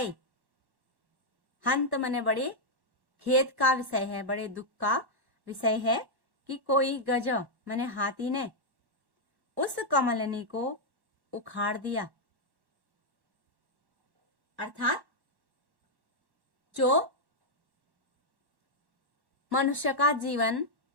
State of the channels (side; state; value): left; late; 1.1 ms